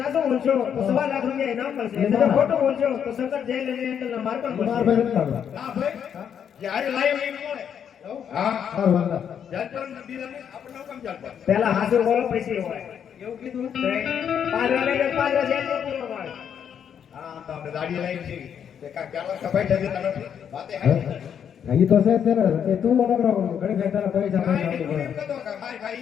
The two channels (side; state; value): right; quieter; 8.3 dB